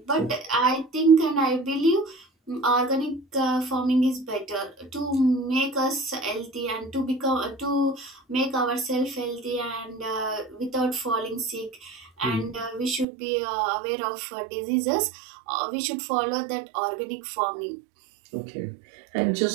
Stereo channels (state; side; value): drops out; left; at 13.1 s